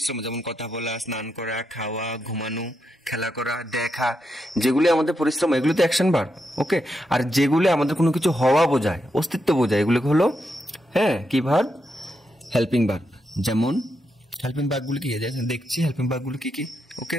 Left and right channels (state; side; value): normal; both; correlation 0.83